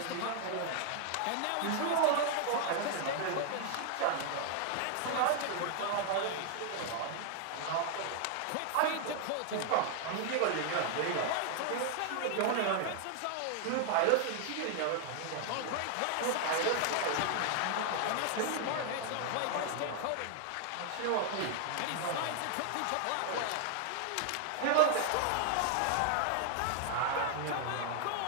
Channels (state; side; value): different; both; correlation 0.00